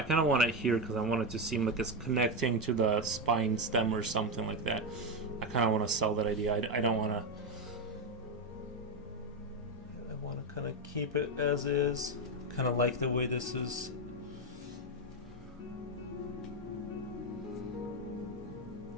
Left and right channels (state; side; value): normal; both; correlation 0.09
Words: kind of want it here because I want it to seem like it's connecting to the spine stem or something like that. I kind of want to sell that idea. I don't want to... I want to kind of keep it as is. Kind of like the way this is.